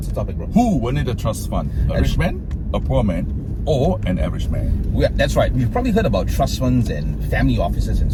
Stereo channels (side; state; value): both; identical; correlation 1.00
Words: the topic, bro? Who will need a trust fund? A rich man, a poor man, or an average man? That's right. We've probably heard about trust funds and family offices and